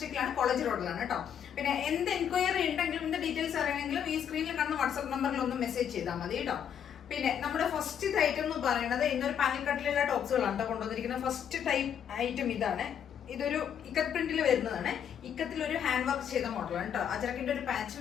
കോളേജ് റോഡിലാണ് കേട്ടോ. പിന്നെ എന്ത് എൻക്വയറി ഉണ്ടെങ്കിലും എന്ത് ഡീറ്റെയിൽസ് അറിയണമെങ്കിലും ഈ സ്ക്രീനിൽ കാണുന്ന വാട്സ്ആപ്പ് നമ്പറിൽ ഒന്ന് മെസ്സേജ് ചെയ്താൽ മതി കേട്ടോ. പിന്നെ നമ്മുടെ ഫസ്റ്റ് ഐറ്റം എന്ന് പറയുന്നത് ഇന്നൊരു പാനൽ കട്ടിലുള്ള ടോപ്സുകളാണ് കേട്ടോ കൊണ്ടുവന്നിരിക്കുന്നത്. ഫസ്റ്റ് ടൈപ്പ് ഐറ്റം ഇതാണ്. ഇതൊരു ഇക്കത്ത് പ്രിന്റിൽ വരുന്നതാണ്. ഇക്കത്തിൽ ഒരു ഹാൻഡ് വർക്ക് ചെയ്ത മോഡലാണ് കേട്ടോ. അജറക്കിന്റെ ഒരു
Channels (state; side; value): quieter; right; 8.7 dB